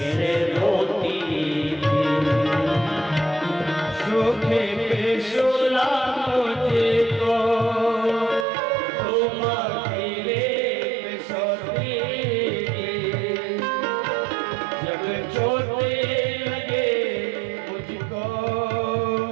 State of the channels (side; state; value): left; drops out; at 8.5 s